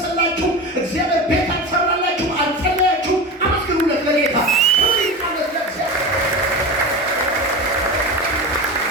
እግዚአብሔር ቤት አልሰራላችሁ፣ አልጸለያችሁ። አመስግኑለት ለጌታ።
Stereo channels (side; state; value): both; normal; correlation 0.27